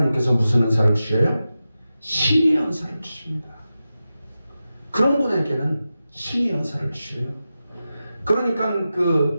무슨 은사를 주셔요? 신의 은사를 주십니다. 그런 분에게는 신의 은사를 주셔요. 그러니까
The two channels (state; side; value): inverted; both; correlation -0.92